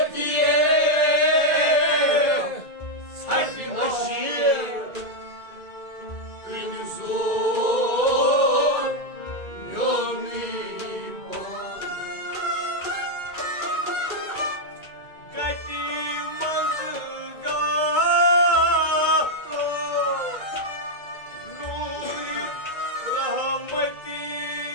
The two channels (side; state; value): right; late; 2.2 ms